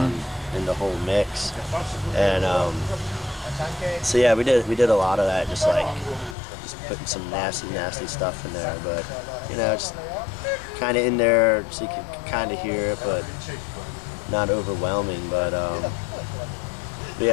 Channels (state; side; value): drops out; right; at 6.4 s